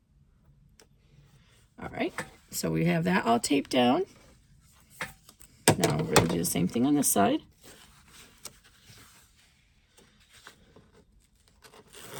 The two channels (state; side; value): identical; both; correlation 1.00